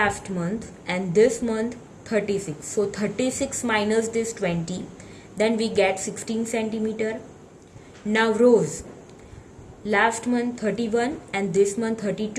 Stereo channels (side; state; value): both; identical; correlation 1.00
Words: month and this month 36, so 36 minus this 20, then we get 16 centimeter. Now rose, last month 31 and this month